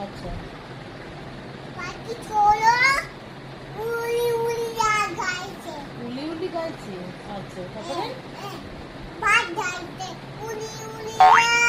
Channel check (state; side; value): identical; both; correlation 1.00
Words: আচ্ছা পাখি ছোড়ো উড়ি উড়ি গাইছে উলি উলি গাইছে। আচ্ছা তারপরে ভাত গাইছে উড়ি উড়ি